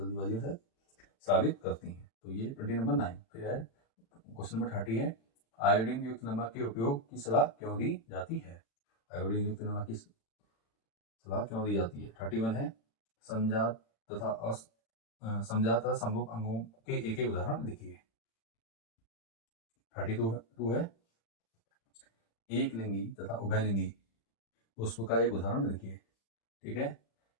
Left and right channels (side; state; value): right; late; 36 ms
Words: से, स्रावित करती हैं, तो ये 20 नंबर 9। फिर है क्वेश्चन नंबर 30 है आयोडीन युक्त नमक के उपयोग की सलाह क्यों दी जाती है। आयोडीन युक्त नमक की सलाह क्यों दी जाती है। 31 है समजात तथा समरूप अंगों के एक एक उदाहरण लिखिए। 32 है एक लिंगी तथा उभयलिंगी पुष्प का एक उदाहरण लिखिए। ठीक है।